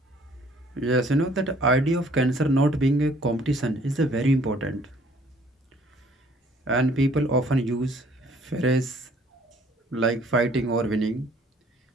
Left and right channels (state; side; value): normal; both; correlation 0.59